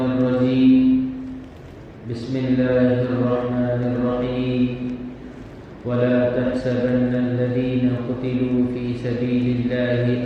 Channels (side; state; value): both; identical; correlation 1.00